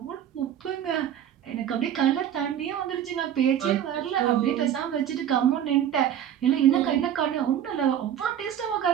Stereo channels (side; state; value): left; quieter; 10.0 dB